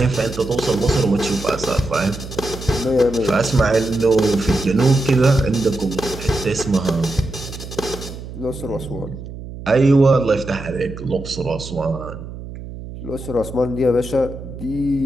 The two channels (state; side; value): noise; right; hum, 12 dB below the sound